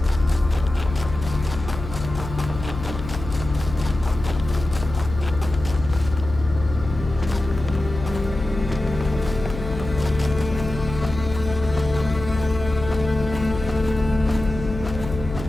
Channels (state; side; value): noise; left; hum, 9 dB below the sound